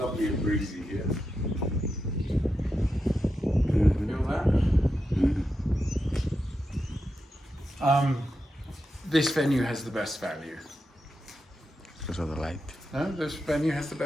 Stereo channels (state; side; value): normal; both; correlation 0.88